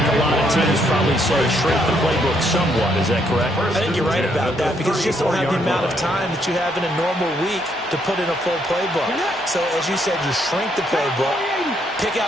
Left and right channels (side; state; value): both; normal; correlation 0.73